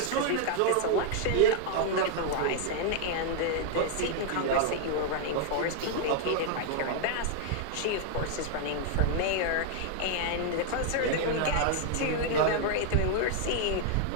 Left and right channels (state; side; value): different; both; correlation 0.00